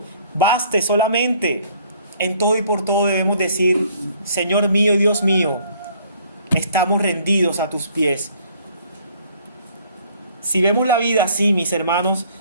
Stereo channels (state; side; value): inverted; both; correlation -0.60